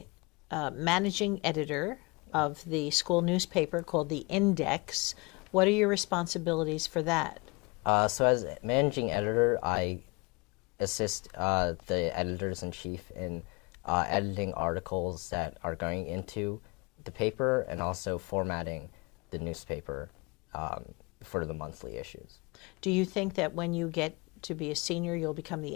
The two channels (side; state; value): right; quieter; 28.1 dB